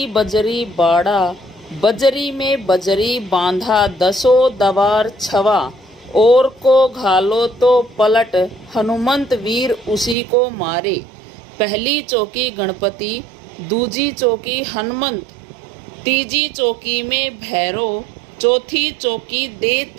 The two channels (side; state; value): left; drops out; at 10.2 s